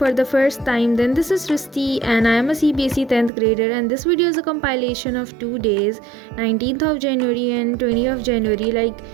the first time, then this is Srishti and I am a CBSE 10th grader, and this video is a compilation of 2 days, 19th of January and 20th of January. Like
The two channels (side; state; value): left; drops out; at 3.3 s